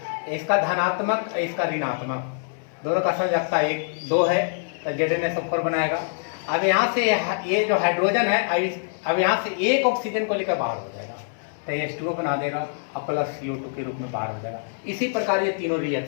इसका धनात्मक, इसका ऋणात्मक, दोनों का संयोजकता 1-2 है तो ZnSO4 बनाएगा। अब यहाँ से ये जो हाइड्रोजन है, अब यहाँ से एक ऑक्सीजन को लेकर बाहर हो जाएगा तो H2O बना देगा और प्लस CO2 के रूप में बाहर हो जाएगा। इसी प्रकार ये तीनों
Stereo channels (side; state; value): right; silent; 62 dB below the other